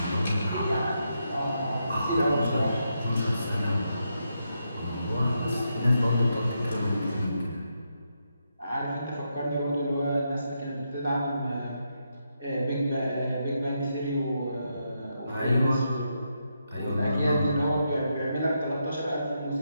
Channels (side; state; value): both; inverted; correlation -0.83